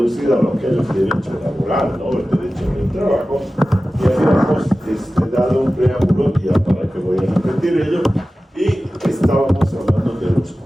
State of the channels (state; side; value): normal; both; correlation 0.95